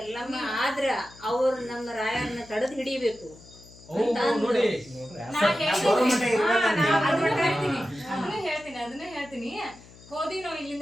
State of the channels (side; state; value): left; noise; hum, 22 dB below the sound